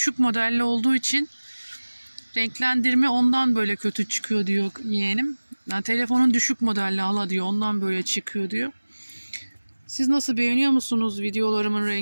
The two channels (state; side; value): inverted; both; correlation -1.00